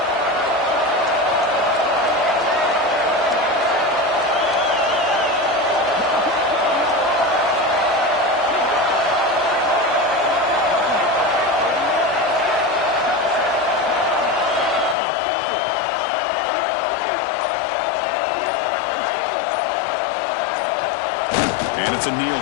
And it's a kneel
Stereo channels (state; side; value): drops out; right; at 15.0 s